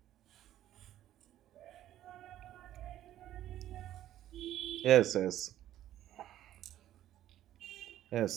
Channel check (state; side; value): quieter; left; 12.6 dB